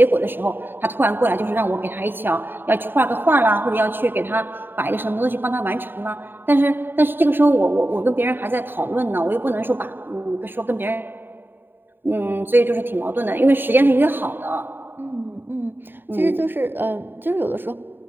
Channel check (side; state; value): left; late; 0.096 ms